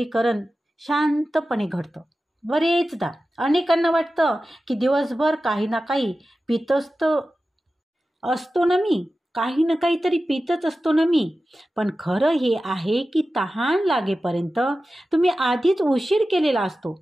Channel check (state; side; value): normal; both; correlation 0.94